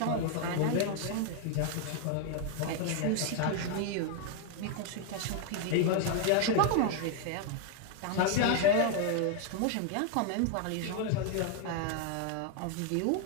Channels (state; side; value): different; both; correlation 0.00